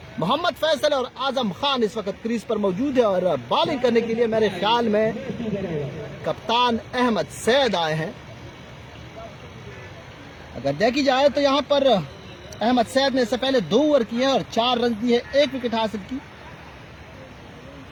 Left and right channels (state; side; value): identical; both; correlation 1.00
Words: मोहम्मद फैसल और आजम खान इस वक्त क्रीज पर मौजूद है और बॉलिंग करने के लिए मेरे ख्याल में कप्तान अहमद सैद आए हैं। अगर देखी जाए तो यहाँ पर अहमद सैद ने इससे पहले 2 ओवर किए और 4 रन दिए, 1 विकेट हासिल की।